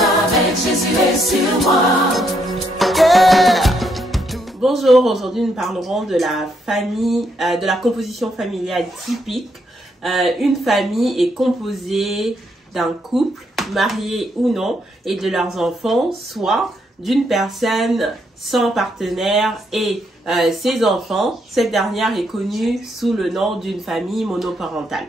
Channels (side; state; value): both; normal; correlation 0.75